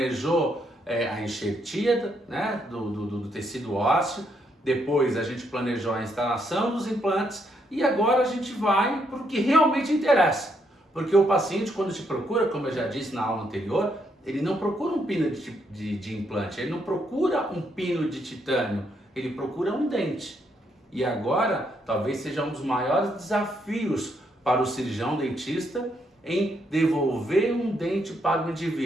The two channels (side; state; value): both; normal; correlation 0.75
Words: a enxertia, né, do tecido ósseo, depois a gente planejou a instalação dos implantes e agora a gente vai para o que realmente interessa. Porque o paciente, quando te procura, como eu já disse na aula anterior, ele não procura um pino de implante, ele não procura um pino de titânio, ele procura um dente. E agora, talvez seja um dos maiores desafios para o cirurgião dentista em devolver um dente para o